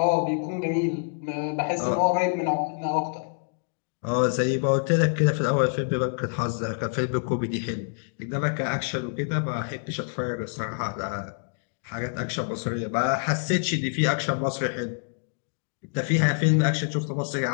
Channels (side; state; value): right; silent; digital silence